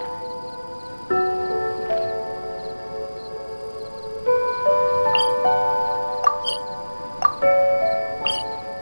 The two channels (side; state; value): both; inverted; correlation -1.00